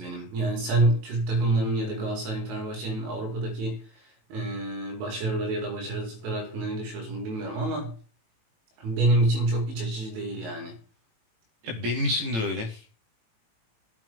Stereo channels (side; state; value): left; late; 19 ms